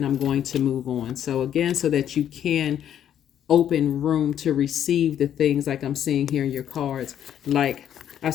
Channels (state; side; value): quieter; right; 10.1 dB